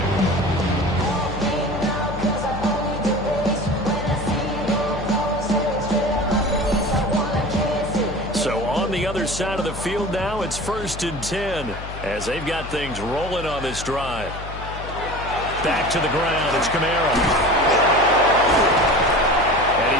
So on the other side of the field now, it's 1st and 10 as they've got things rolling on this drive. Back to the ground. It's Kamara. And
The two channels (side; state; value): left; noise; hum, 10 dB below the sound